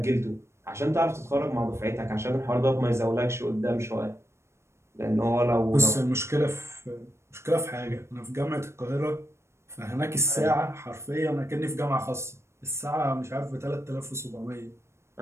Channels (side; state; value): left; late; 0.13 ms